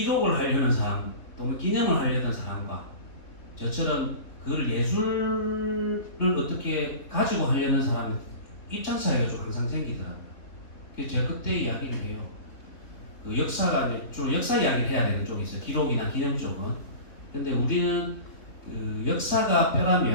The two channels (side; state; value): right; late; 3.7 ms